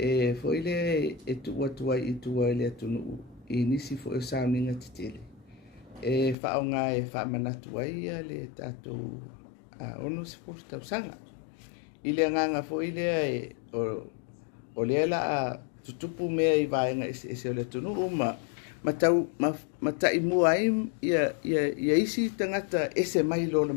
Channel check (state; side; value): drops out; right; at 6.4 s